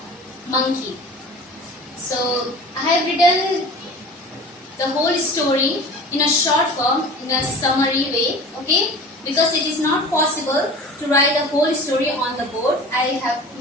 monkey. So I have written the whole story in a short form, in a summary way, okay? Because it is not possible to write the whole story on the board. I have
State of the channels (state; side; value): normal; both; correlation 0.39